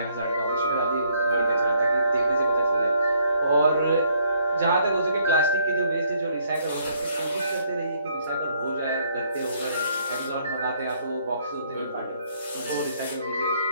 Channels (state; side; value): inverted; both; correlation -0.68